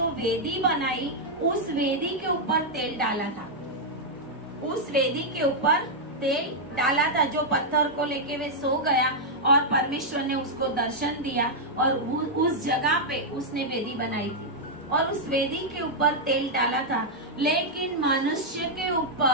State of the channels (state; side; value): normal; both; correlation -0.05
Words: वेदी बनाई उस वेदी के ऊपर तेल डाला था। उस वेदी के ऊपर तेल डाला था। जो पत्थर को लेके वे सो गया और परमेश्वर ने उसको दर्शन दिया और उस जगह पे उसने वेदी बनाई थी और उस वेदी के ऊपर तेल डाला था। लेकिन मनुष्य के